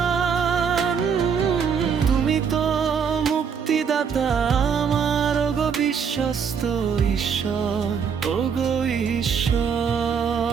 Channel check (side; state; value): left; quieter; 6.7 dB